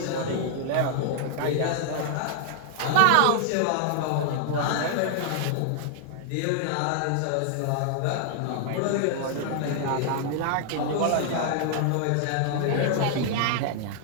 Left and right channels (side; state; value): both; different; correlation 0.00